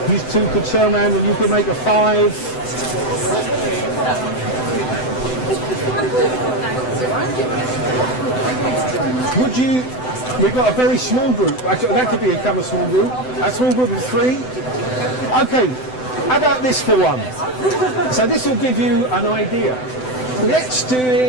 You 2 could turn around and you could make a 5. Would you? We've got a very small group. Actually, that could become a small group. A small group of 3. Okay. How about this for one? So this will give you an idea. Let's do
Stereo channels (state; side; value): late; right; 7.9 ms